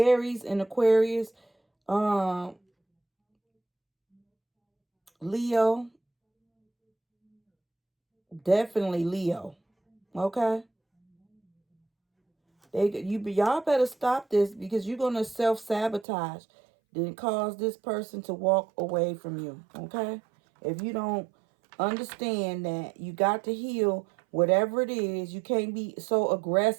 and Aquarius, Leo, definitely Leo. Okay? Y'all better stop this because you're going to self-sabotage, then cause this person to walk away from you. Okay? If you don't understand that you got to heal whatever it is, you can't be so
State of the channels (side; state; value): left; drops out; at 16.1 s